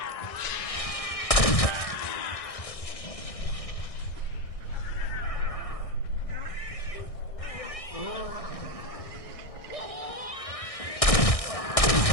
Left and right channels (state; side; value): late; right; 1.6 ms